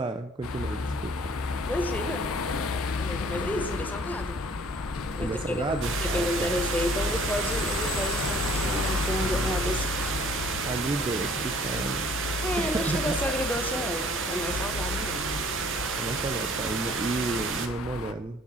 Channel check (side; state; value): both; normal; correlation 0.56